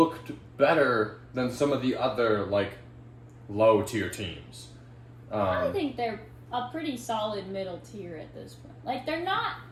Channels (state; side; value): identical; both; correlation 1.00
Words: better than some of the other, low-tier teams. I think they're a pretty solid middle tier at this point. They're not